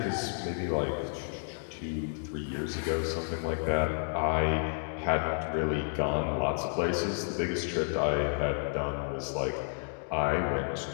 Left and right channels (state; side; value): silent; right; digital silence